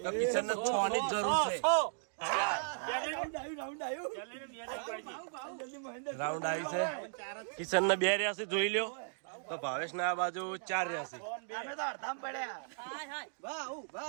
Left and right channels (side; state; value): left; silent; digital silence